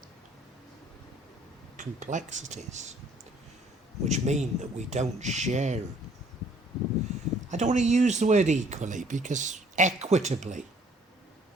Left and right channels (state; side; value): normal; both; correlation 0.59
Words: complexities, which mean that we don't share. I don't want to use the word equally, because equitably